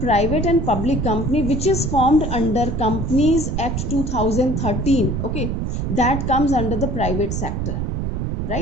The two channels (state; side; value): noise; right; rumble, 2 dB below the sound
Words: and public company which is formed under Companies Act 2013, okay, that comes under the private sector,